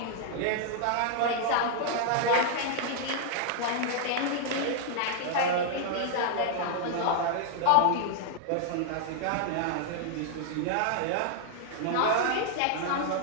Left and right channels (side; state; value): both; different; correlation -0.01